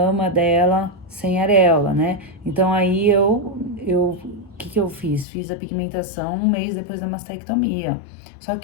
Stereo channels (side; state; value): right; drops out; at 5.2 s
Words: dela sem areola, né? Então, aí o que eu fiz? Fiz a pigmentação 1 mês depois da mastectomia. Só